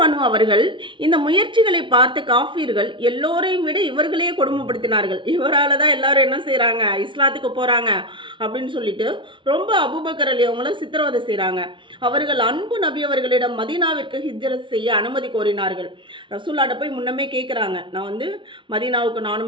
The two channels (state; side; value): late; left; 0.24 ms